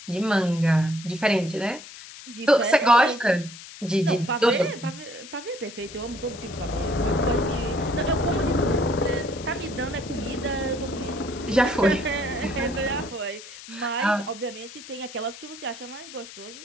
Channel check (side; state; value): left; noise; hiss, 15 dB below the sound